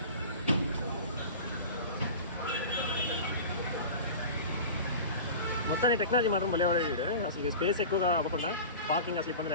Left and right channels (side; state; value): both; inverted; correlation -0.35